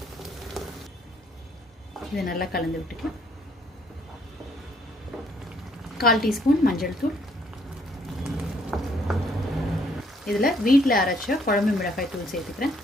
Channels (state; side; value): normal; both; correlation 0.66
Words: இதை நல்லா கலந்து விட்டுக்கலாம். 1/4 டீஸ்பூன் மஞ்சள் தூள், இதில் வீட்டில் அரைச்ச குழம்பு மிளகாய் தூள் சேர்த்துக்கிறேன்.